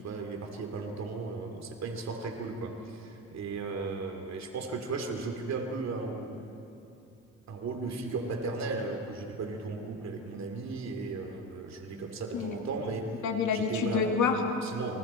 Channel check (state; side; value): normal; both; correlation 0.20